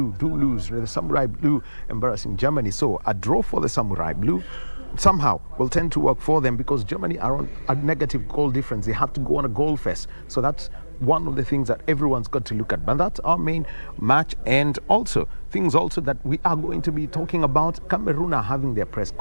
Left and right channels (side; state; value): both; inverted; correlation -1.00